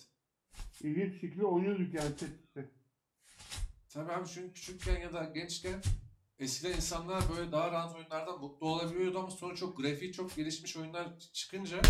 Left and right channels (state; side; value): identical; both; correlation 1.00